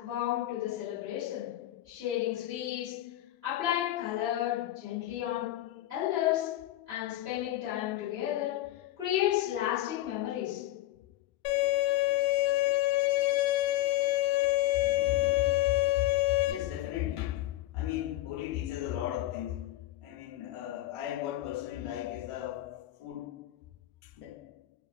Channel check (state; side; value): quieter; right; 15.3 dB